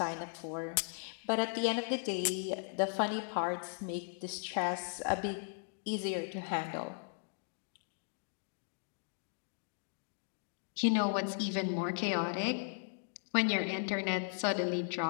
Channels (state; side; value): silent; right; digital silence